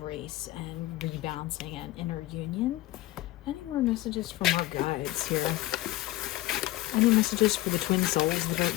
and rebalancing and inner union. Any more messages from our guides here? Any messages for the twin souls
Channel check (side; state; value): right; quieter; 16.9 dB